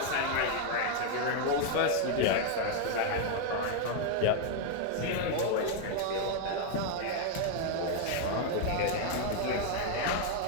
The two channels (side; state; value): both; different; correlation 0.00